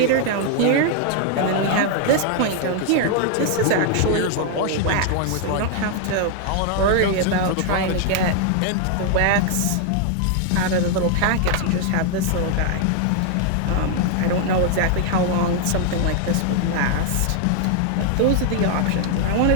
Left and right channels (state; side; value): different; both; correlation 0.00